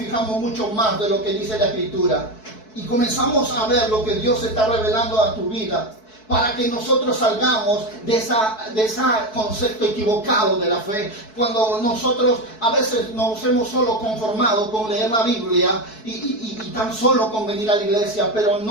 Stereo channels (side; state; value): right; late; 4.6 ms